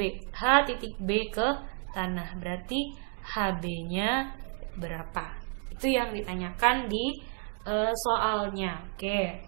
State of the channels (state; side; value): quieter; left; 38.5 dB